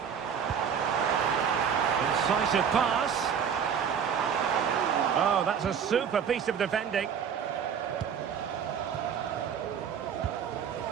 Incisive pass. Oh, that's a super piece of defending.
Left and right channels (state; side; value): quieter; left; 7.5 dB